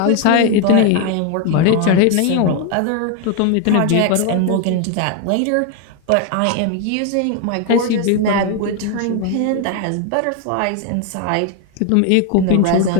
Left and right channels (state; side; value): different; both; correlation 0.01